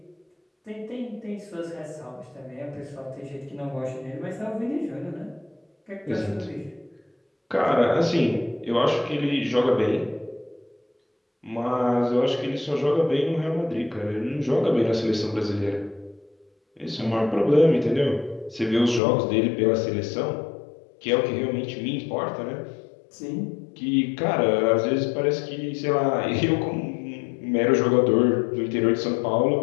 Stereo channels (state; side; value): drops out; right; at 19.0 s